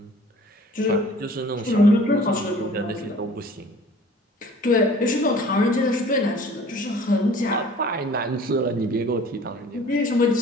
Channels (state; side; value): normal; both; correlation 0.49